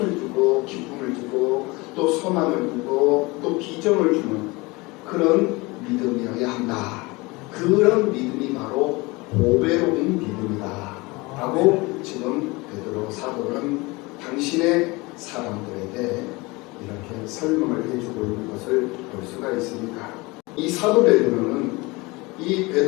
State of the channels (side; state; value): right; quieter; 24.1 dB